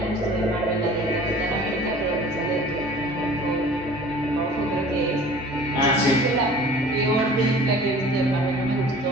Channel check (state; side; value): normal; both; correlation 0.46